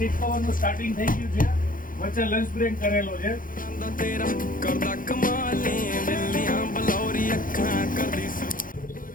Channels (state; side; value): late; right; 0.40 ms